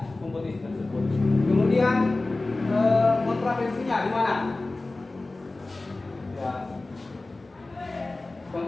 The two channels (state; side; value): quieter; right; 3.1 dB